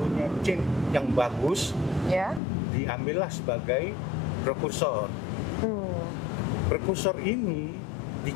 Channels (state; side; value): drops out; right; at 2.4 s